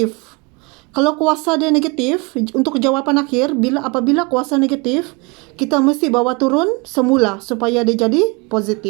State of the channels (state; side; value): quieter; left; 28.0 dB